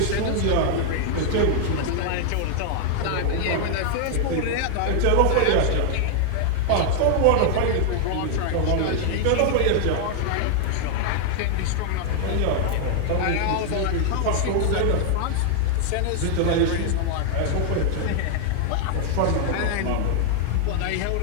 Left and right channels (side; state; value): both; different; correlation 0.00